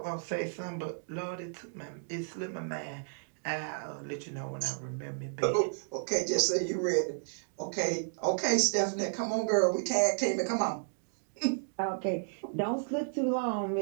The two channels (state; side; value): silent; left; digital silence